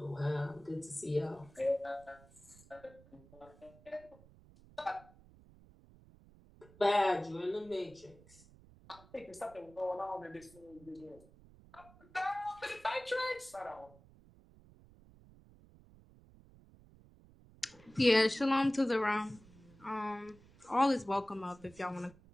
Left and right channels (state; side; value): noise; right; rumble, 24 dB below the sound